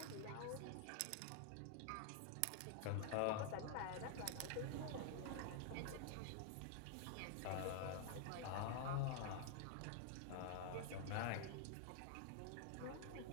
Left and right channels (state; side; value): different; both; correlation 0.00